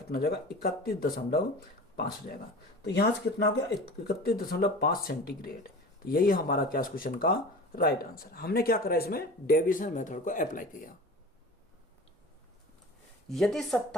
हो जाएगा 31.5 हो जाएगा, तो यहां से कितना हो गया 31.5 सेंटीग्रेड। तो यही हमारा क्या क्वेश्चन का राइट आंसर। हमने क्या करा, इसमें डेविएशन मेथड को अप्लाई किया। यदि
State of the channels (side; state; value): both; normal; correlation 0.37